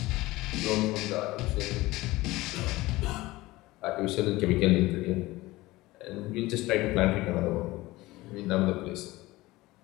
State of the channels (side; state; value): right; quieter; 19.3 dB